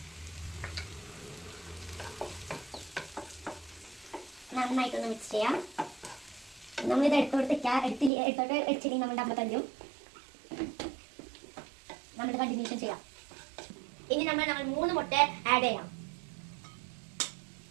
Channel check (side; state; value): left; drops out; at 8.1 s